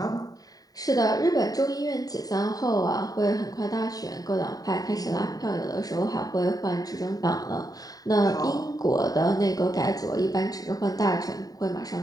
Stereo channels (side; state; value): right; late; 0.18 ms